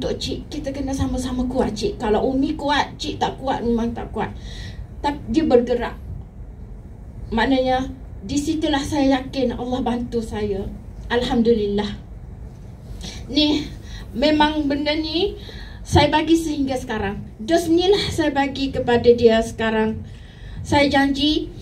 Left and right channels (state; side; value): identical; both; correlation 1.00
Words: cik. Kita kena sama-sama kuat cik. Kalau Umi kuat, cik tak kuat, memang tak kuat. Tapi dia bergerak. Maknanya, di situlah saya yakin Allah bantu saya. Alhamdulillah. Ni, memang benda ni, saya bagi sehingga sekarang. Dos ni lah saya bagi kepada dia sekarang. Saya janji